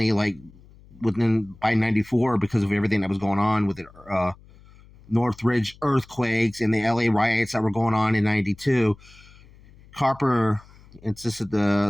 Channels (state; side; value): noise; left; hum, 24 dB below the sound